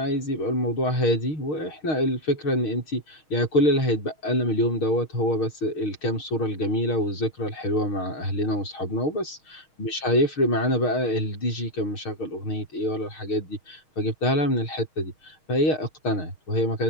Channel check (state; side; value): late; right; 6.4 ms